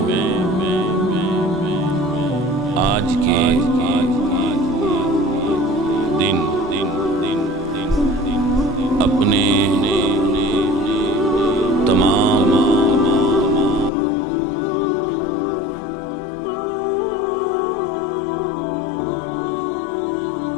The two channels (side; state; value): right; drops out; at 13.9 s